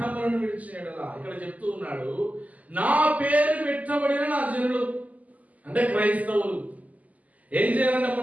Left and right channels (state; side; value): late; left; 0.075 ms